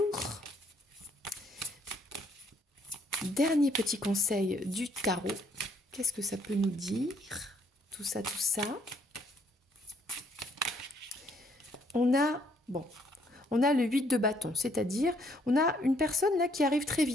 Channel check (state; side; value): normal; both; correlation 0.68